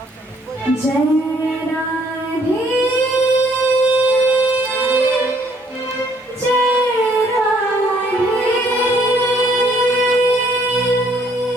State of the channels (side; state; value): both; normal; correlation 0.64